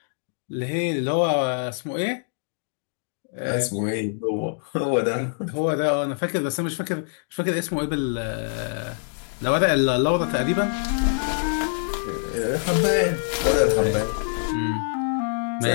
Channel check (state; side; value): silent; right; digital silence